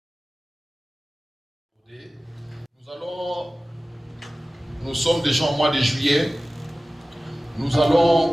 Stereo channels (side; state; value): both; normal; correlation 0.97